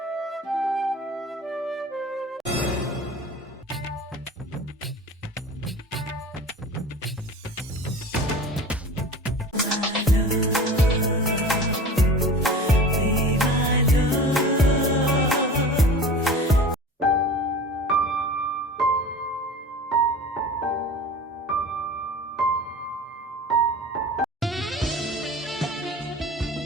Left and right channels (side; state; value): both; normal; correlation 0.37